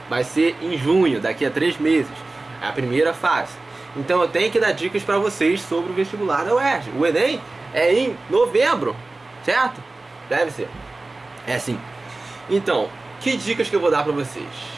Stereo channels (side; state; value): left; quieter; 3.2 dB